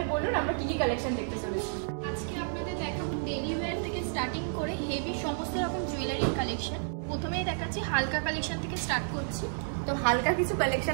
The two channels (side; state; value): left; silent; digital silence